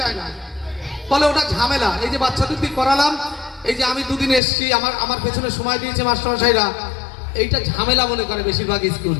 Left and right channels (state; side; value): drops out; right; at 4.4 s